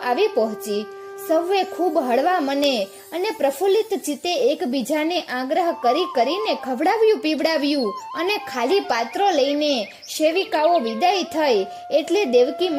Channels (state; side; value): identical; both; correlation 1.00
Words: પહોંચી. સૌએ ખૂબ હળવા મને અને પ્રફુલ્લિત ચિત્તે એકબીજાને આગ્રહ કરીને ખવડાવ્યું પીવડાવ્યું અને ખાલી પાત્રો લઈને સેવિકાઓ વિદાય થઈ એટલે દેવકી